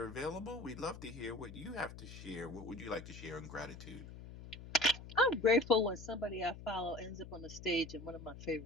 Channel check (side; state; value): left; noise; hum, 13 dB below the sound